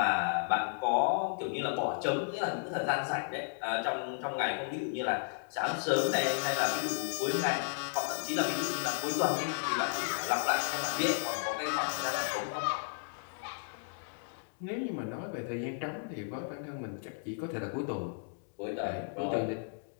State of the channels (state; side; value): silent; right; digital silence